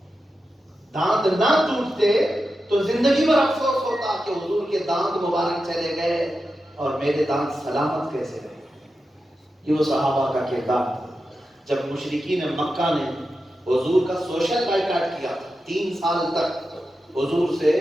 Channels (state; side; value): normal; both; correlation 0.91